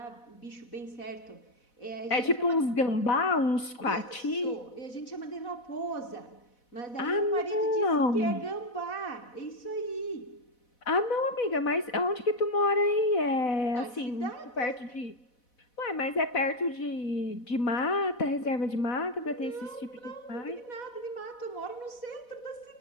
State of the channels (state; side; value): late; right; 4.1 ms